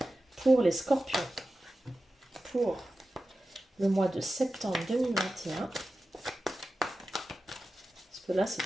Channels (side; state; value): both; normal; correlation 0.93